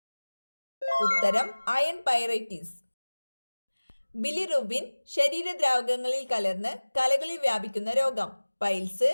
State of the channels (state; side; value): inverted; both; correlation -1.00